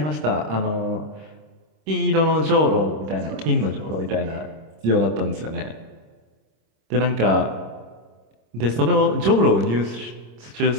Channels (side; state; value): left; late; 26 ms